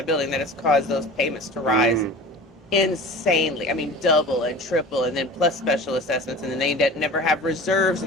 building that has caused those payments to rise insanely. I mean, double and triple, and then plus special assessments, and then they never have reserves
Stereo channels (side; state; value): both; normal; correlation 0.37